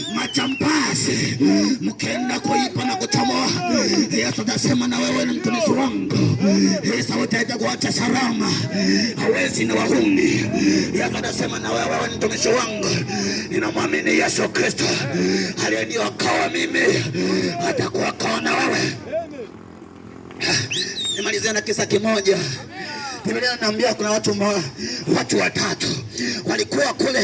Majambazi mkenda kuipa na kuchomoa, Yesu atasema na wewe ni mtumishi wangu. Yesu utaenda kuacha salama, hawezi na wahuni. Yesu atasema na wewe ni mtumishi wangu. Ninamwamini Yesu Kristo aliyeniokoa mimi, atakuokoa na wewe. Nimalizia na kisa kimoja. Biblia inaniambia kuna watu watatu walikuwa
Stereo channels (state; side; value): identical; both; correlation 1.00